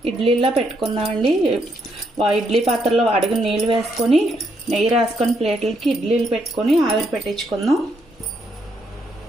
ఇడ్లీలా పెట్టుకుందామండి. ఇడ్లీ పాత్రలో అడుగు నీళ్ళు వేసుకొని నెయ్యి రాసుకొని ప్లేట్లకి ఇడ్లీలు పెట్టుకొని ఆవిరి పెట్టించుకుందాం.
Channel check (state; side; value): normal; both; correlation 0.76